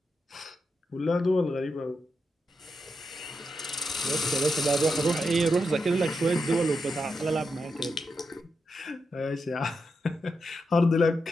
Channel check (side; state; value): both; normal; correlation 0.86